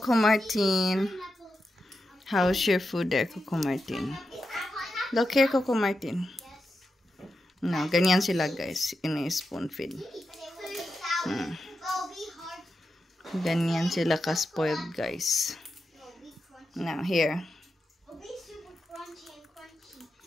Martin. How's your food there, Coco Martin? Look here, Coco Martin. No, ganyan sila guys. Ini-spoon feed. Ganyan sila ka-spoiled guys. Now, here.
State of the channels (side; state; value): both; normal; correlation 0.89